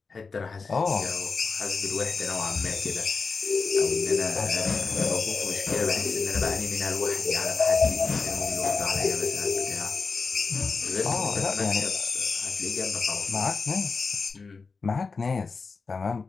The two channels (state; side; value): quieter; right; 4.6 dB